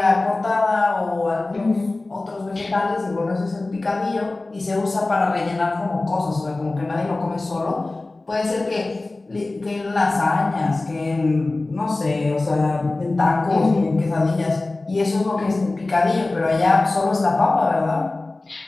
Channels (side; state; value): right; quieter; 3.1 dB